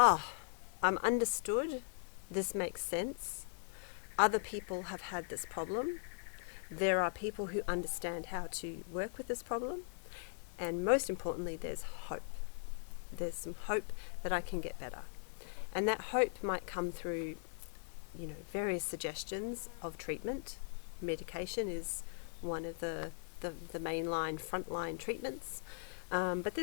understood, this makes sense, other people have had this problem, there are people who understand how to work with this problem, and most importantly, there's hope. There's some hope that I can get better. And that hope might come through, various suggestions of treatment. Medication is one of the mainline, frontline treatments. But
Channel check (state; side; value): silent; right; 51 dB below the other